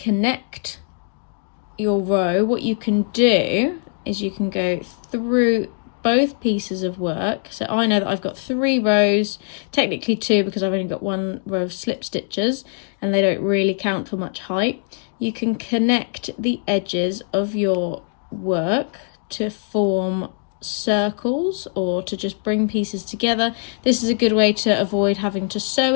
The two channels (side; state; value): right; silent; 65 dB below the other